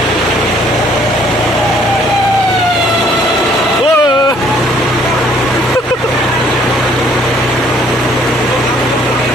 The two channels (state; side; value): normal; both; correlation 0.62